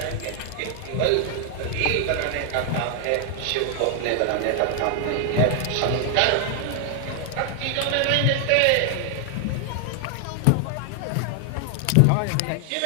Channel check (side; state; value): both; different; correlation 0.00